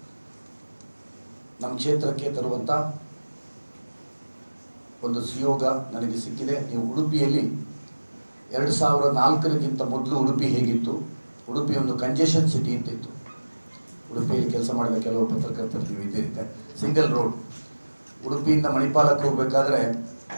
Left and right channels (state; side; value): inverted; both; correlation -1.00